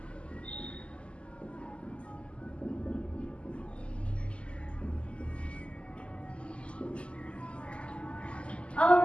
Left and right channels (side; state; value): right; late; 0.055 ms